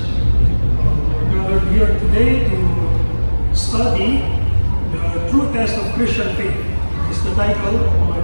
We're gathered here today to study the true test of Christian faith. Is the title of my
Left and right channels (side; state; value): both; inverted; correlation -1.00